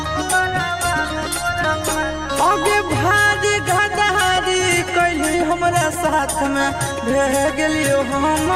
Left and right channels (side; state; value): both; identical; correlation 1.00